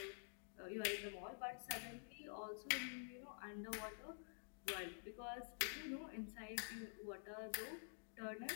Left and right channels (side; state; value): right; silent; digital silence